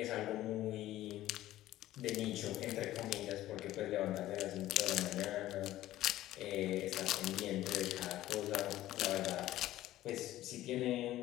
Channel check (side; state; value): right; quieter; 14.7 dB